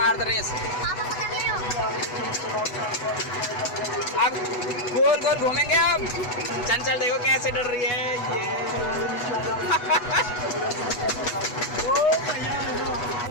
दो रेस। अब गोल गोल घूमेंगे। अब चंचल देखो कैसे डर रही है ये।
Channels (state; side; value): late; right; 8.1 ms